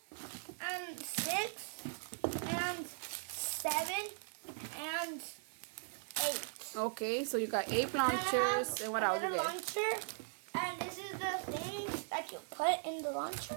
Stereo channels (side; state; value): left; silent; digital silence